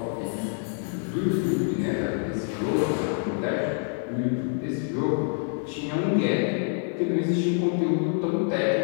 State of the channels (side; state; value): right; silent; 61 dB below the other